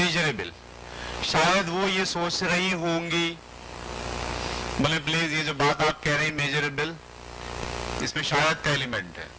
شاید وہ یہ سوچ رہی ہوں گی، بولے پلیز یہ جو بات آپ کہہ رہے ہیں میجریبل، اس میں شاید کا ایلیمنٹ ہے.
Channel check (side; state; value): both; identical; correlation 1.00